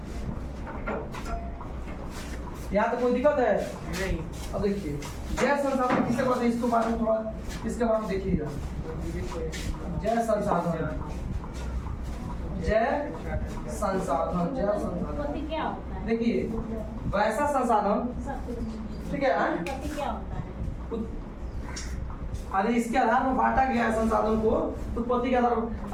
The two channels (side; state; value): both; identical; correlation 1.00